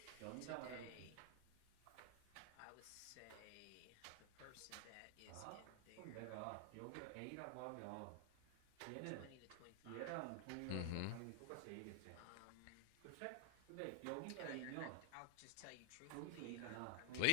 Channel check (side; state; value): both; different; correlation 0.00